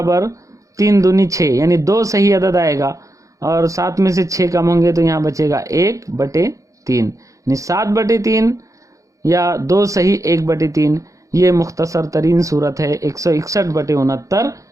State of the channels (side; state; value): left; late; 0.16 ms